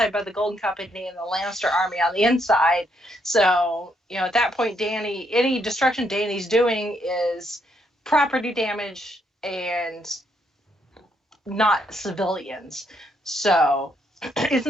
by the Golden Company and the Lannister army on the inside. So, at that point, any destruction Dany's doing is property damage and not civilians. So it's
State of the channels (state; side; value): normal; both; correlation 0.74